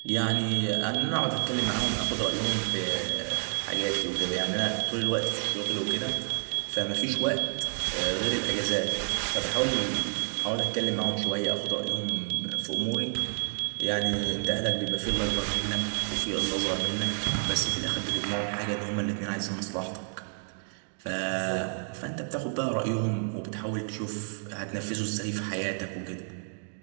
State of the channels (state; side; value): silent; left; 58 dB below the other